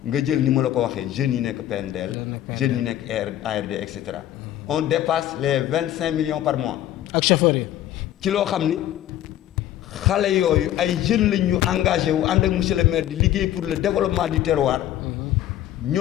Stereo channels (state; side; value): quieter; right; 12.5 dB